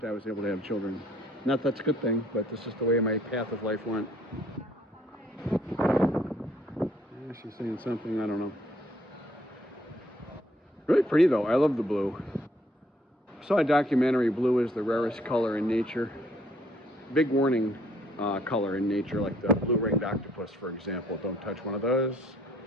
I was able to have children. Not that's a good thing, but that's just the way my path of life went. Yeah, she's saying something, I don't know. Really pretty though. I love the blue. I saw a documentary, blue is the rarest color in nature. Big warning color in nature, like the blue-ringed octopus, for example. Don't touch one of those.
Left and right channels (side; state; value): both; normal; correlation 0.64